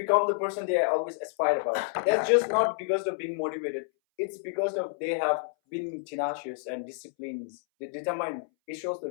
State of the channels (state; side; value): silent; right; 58 dB below the other